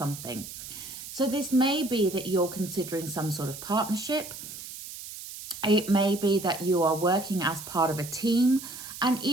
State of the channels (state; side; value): noise; right; hiss, 11 dB below the sound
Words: So this may be that you're considering some sort of partnership. It may be that you are working as part of a team. And